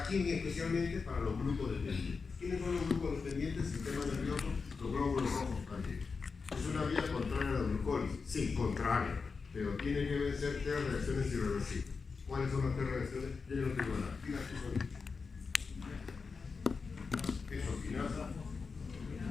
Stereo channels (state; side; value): quieter; right; 4.9 dB